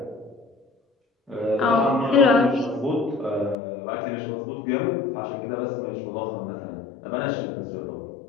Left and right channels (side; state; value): right; drops out; at 3.6 s